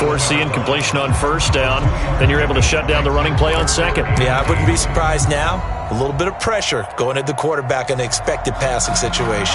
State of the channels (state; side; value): identical; both; correlation 1.00